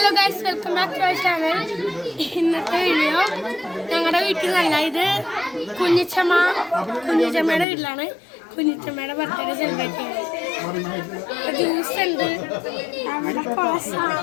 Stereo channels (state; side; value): drops out; right; at 7.7 s